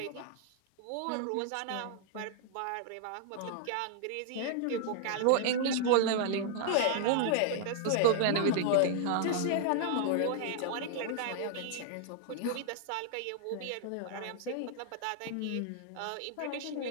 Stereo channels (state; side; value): different; both; correlation -0.01